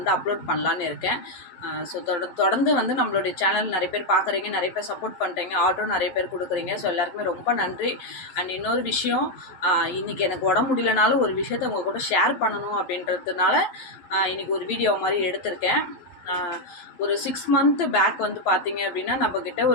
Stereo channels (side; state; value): right; late; 11 ms